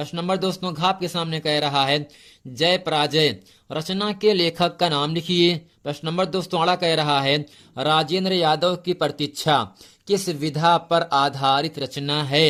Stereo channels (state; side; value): identical; both; correlation 1.00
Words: नंबर दोस्तों घ आपके सामने कह रहा है, जय पराजय रचना के लेखक का नाम लिखिए। प्रश्न नंबर दोस्तों अड़ा कह रहा है, राजेंद्र यादव की प्रतीक्षा किस विधा पर आधारित रचना